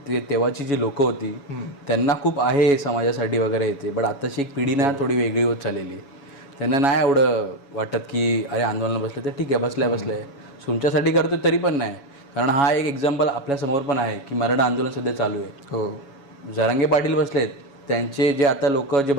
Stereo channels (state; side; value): late; right; 7.2 ms